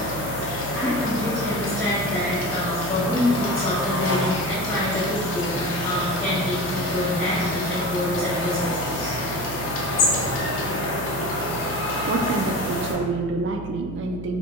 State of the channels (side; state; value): right; noise; hum, 11 dB below the sound